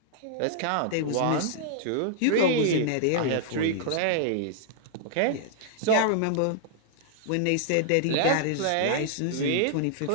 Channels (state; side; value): different; both; correlation -0.01